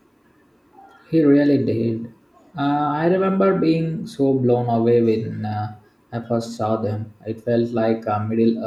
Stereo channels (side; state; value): both; identical; correlation 1.00